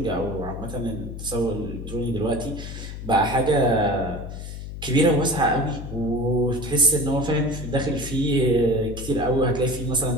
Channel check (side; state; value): left; noise; hum, 9 dB below the sound